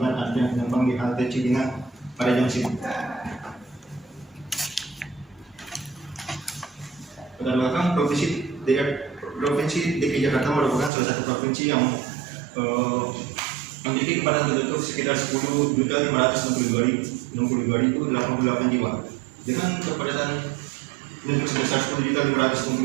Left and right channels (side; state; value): left; drops out; at 10.9 s